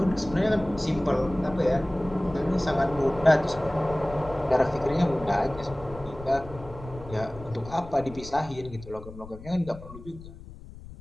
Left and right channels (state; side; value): noise; left; rumble, 15 dB below the sound